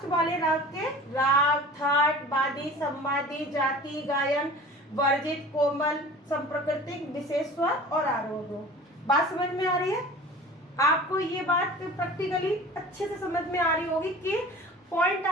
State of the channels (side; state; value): both; normal; correlation 0.41